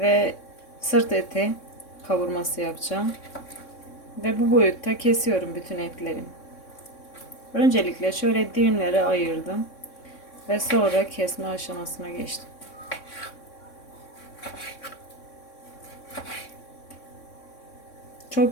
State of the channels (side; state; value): right; late; 3.6 ms